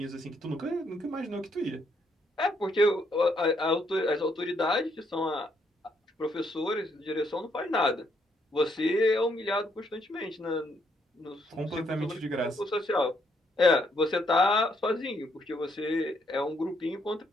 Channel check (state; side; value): normal; both; correlation 0.73